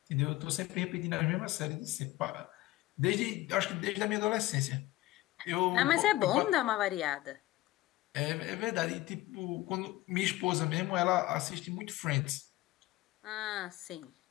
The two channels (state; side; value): quieter; right; 17.5 dB